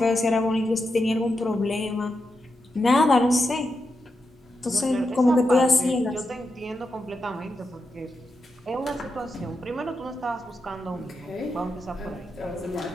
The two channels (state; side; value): normal; both; correlation 0.87